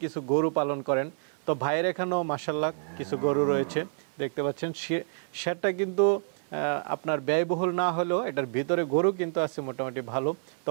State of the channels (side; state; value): left; silent; digital silence